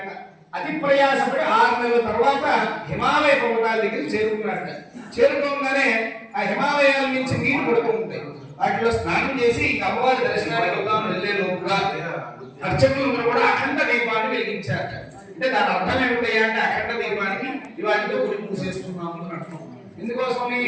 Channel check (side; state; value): both; identical; correlation 1.00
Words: అతి ప్రయాసపడి 6 నెలల తర్వాత హిమాలయ పర్వతాల దగ్గర చేరుకున్నాడట. చేరుకోగానే ఆ హిమాలయాల నుంచి నీళ్లు పడుతూ ఉంటాయి. వాటిలో స్నానం చేసి అమ్మవారి దర్శనానికి వెళ్దాం వెళ్ళే లోపుగా అర్చకులు కూడా అఖండ దీపాన్ని వెలిగించారట. అంటే దాని అర్థం ఏమిటయ్యా అంటే అఖండ దీపానికి ఇవాటితో గుడి మూసేస్తున్నాము అని అర్థం. ఎందుకోసం